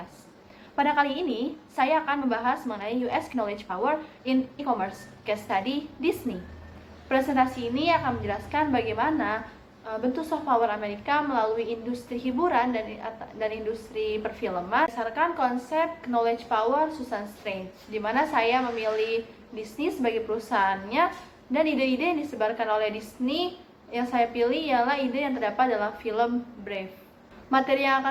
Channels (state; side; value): identical; both; correlation 1.00